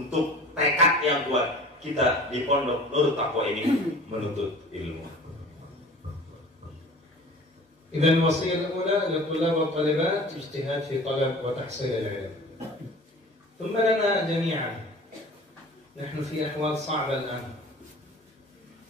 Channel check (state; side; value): normal; both; correlation 0.42